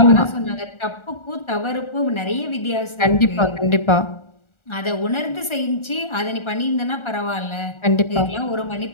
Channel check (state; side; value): late; right; 1.4 ms